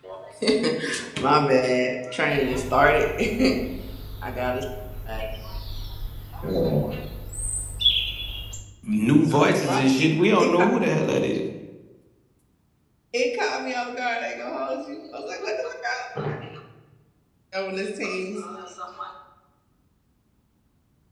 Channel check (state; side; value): identical; both; correlation 1.00